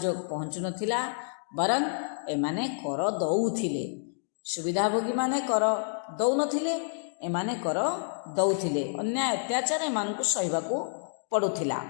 पहुँचु नथिला, बरं एमाने कर दौथिले। सुविधाभोगी माने कर दौनथिले, एमाने कर दौथिले, अन्याय अत्याचार एमानकु सहिबाकु पड़ुथिला।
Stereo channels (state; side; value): silent; right; digital silence